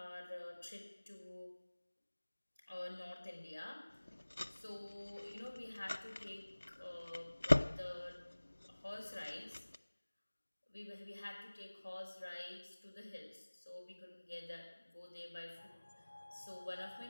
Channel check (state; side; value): inverted; both; correlation -1.00